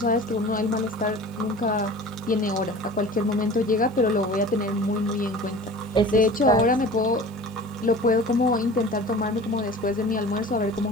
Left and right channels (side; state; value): both; normal; correlation 0.40